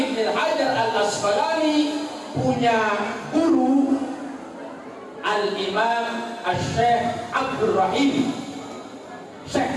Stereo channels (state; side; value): identical; both; correlation 1.00